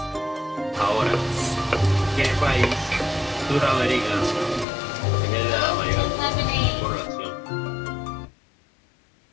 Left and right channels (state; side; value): drops out; right; at 4.7 s